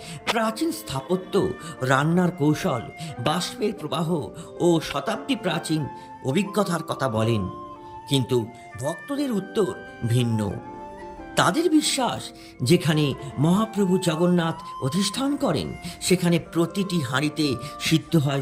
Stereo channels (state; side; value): identical; both; correlation 1.00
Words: প্রাচীন স্থাপত্য, রান্নার কৌশল, বাষ্পের প্রবাহ ও শতাব্দী প্রাচীন অভিজ্ঞতার কথা বলেন, কিন্তু ভক্তদের উত্তর ভিন্ন। তাদের বিশ্বাস, যেখানে মহাপ্রভু জগন্নাথ অধিষ্ঠান করেন, সেখানে প্রতিটি হাঁড়িতে সিদ্ধ